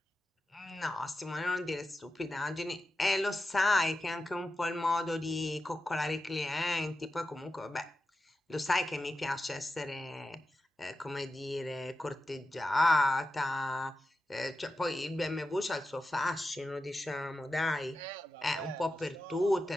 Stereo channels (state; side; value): normal; both; correlation 0.91